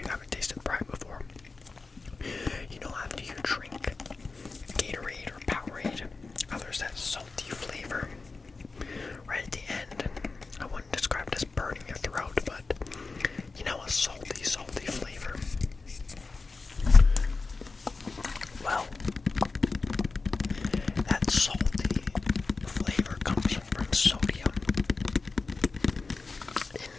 haven't tasted Prime before, you know, after you drink Gatorade or Powerade, there's that salty flavor right at the end. I wouldn't describe it as burning your throat, but you know, a salty, salty flavor. Well, that salty flavor comes from sodium. In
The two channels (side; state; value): right; quieter; 4.0 dB